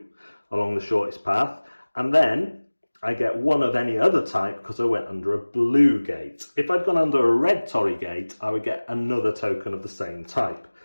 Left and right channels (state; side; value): inverted; both; correlation -1.00